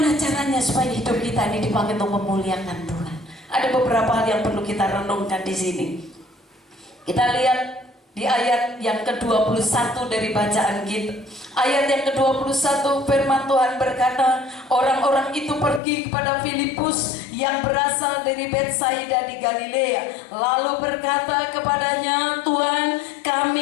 caranya supaya hidup kita ini dipakai untuk memuliakan Tuhan? Ada beberapa hal yang perlu kita renungkan di sini. Kita lihat di ayat yang ke-21 dari bacaan kita. Ayat yang ke-21, firman Tuhan berkata, orang-orang itu pergi kepada Filipus yang berasal dari Betsaida di Galilea, lalu berkata kepadanya, Tuhan,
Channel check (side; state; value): right; drops out; at 15.8 s